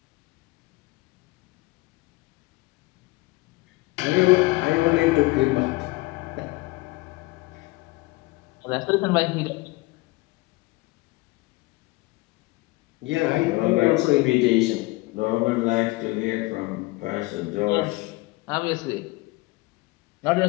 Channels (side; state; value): right; quieter; 22.1 dB